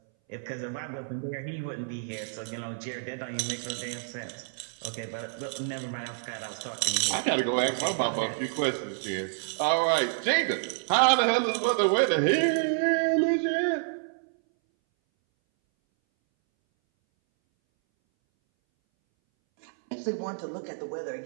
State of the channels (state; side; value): silent; left; 59 dB below the other